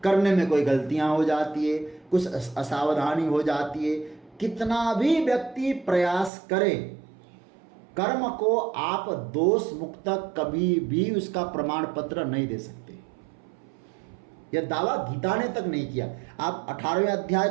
करने में कोई गलतियां हो जाती है, कुछ असावधानी हो जाती है। कितना भी व्यक्ति प्रयास करे, कर्म को आप दोष मुक्त कभी भी उसका प्रमाण पत्र नहीं दे सकते। यह दावा गीता ने तक नहीं किया। आप 18वें अध्याय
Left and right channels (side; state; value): left; drops out; at 6.3 s